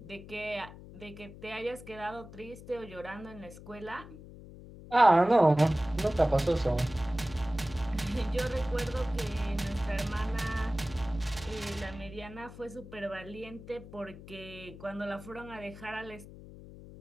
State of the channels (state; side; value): noise; left; hum, 16 dB below the sound